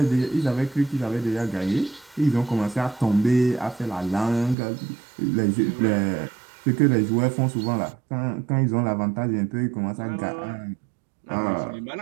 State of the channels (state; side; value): drops out; left; at 4.5 s